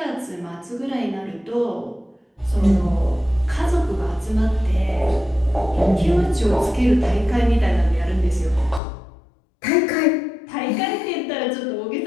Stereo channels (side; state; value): right; drops out; at 8.8 s